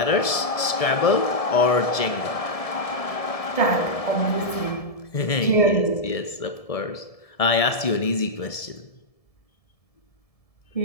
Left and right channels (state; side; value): late; right; 1.7 ms